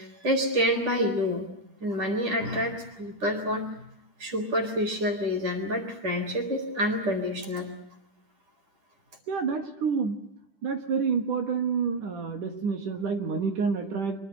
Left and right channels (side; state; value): left; late; 10 ms